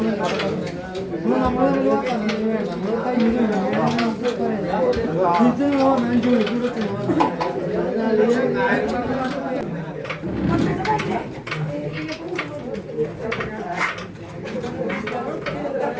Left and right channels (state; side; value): identical; both; correlation 1.00